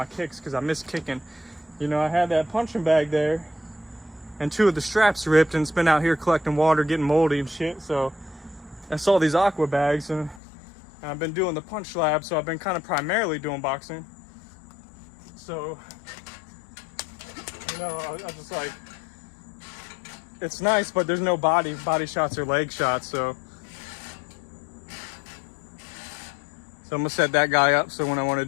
kicks, because I miss kicking. You know, I had that punching bag there, and 2 of the straps ripped, and it's been out here collecting water, getting moldy and shit. So I saw these aqua bags, and I've been doing the punch lab, so I've been kind of primarily doing boxing. So, you know, I just like, it's nice, but there's no body shots or leg shots, so I'm gonna set that guy up so when I want to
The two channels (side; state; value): right; drops out; at 10.4 s